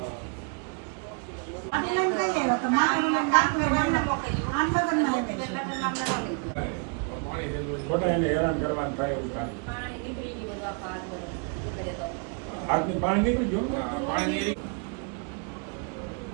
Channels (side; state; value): left; quieter; 39.3 dB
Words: पानी निकल जो पानी